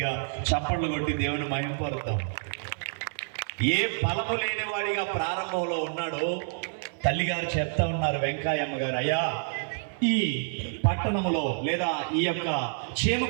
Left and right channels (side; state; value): left; silent; 59 dB below the other